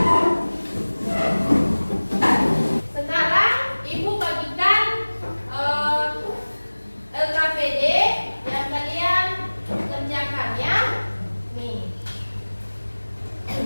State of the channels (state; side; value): inverted; both; correlation -1.00